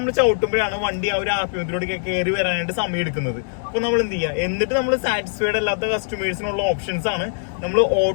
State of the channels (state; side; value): silent; right; digital silence